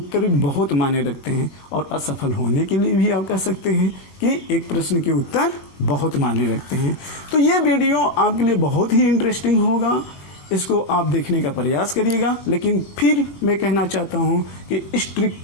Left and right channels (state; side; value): late; right; 21 ms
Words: बहुत मायने रखते हैं और असफल होने के लिए भी आप कह सकते हैं कि एक प्रश्न के उत्तर बहुत मायने रखते हैं। तो ये वीडियो आपके लिए बहुत ही इंटरेस्टिंग होगा, इसको आप देखने का प्रयास करिएगा। लेकिन फिर मैं कहना चाहता हूँ कि इस ट्रिक